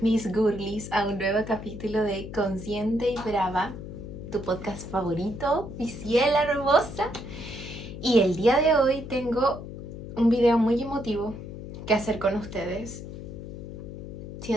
girlies, a un nuevo capítulo de Consciente y Brava, tu podcast favorito, mi ciela hermosa. Y el día de hoy tengo un video muy emotivo que hacer con ustedes.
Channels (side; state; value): left; noise; hum, 10 dB below the sound